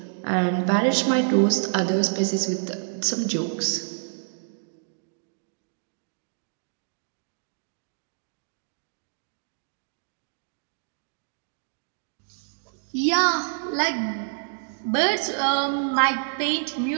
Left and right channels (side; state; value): left; silent; digital silence